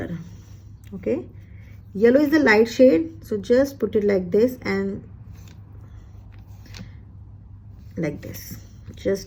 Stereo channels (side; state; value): both; identical; correlation 1.00